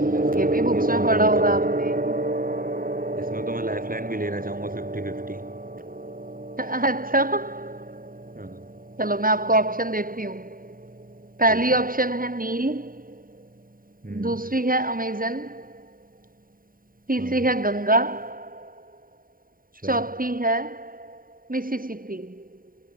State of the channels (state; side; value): late; left; 0.41 ms